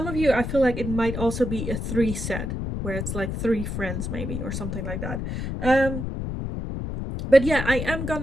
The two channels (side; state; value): left; noise; rumble, 4 dB below the sound